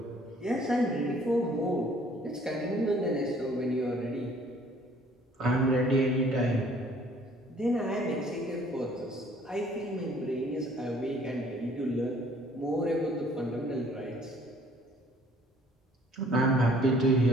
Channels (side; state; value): both; normal; correlation 0.57